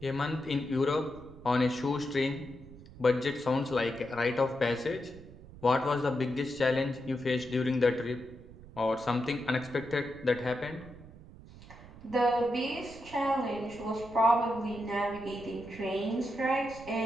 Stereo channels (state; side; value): noise; right; rumble, 18 dB below the sound